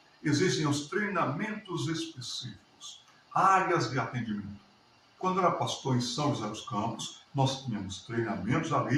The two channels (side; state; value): both; identical; correlation 1.00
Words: existem os treinamentos específicos, áreas de atendimento. Quando eu era pastor em São José dos Campos, nós tínhamos treinamentos